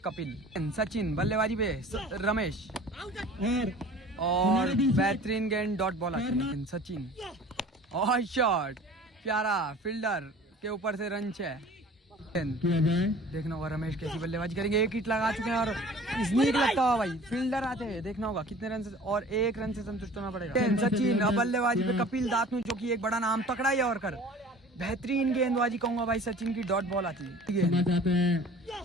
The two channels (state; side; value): normal; both; correlation 0.45